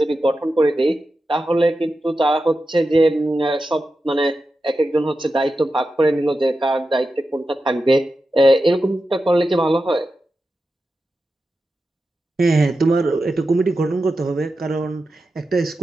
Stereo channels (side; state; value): both; normal; correlation 0.91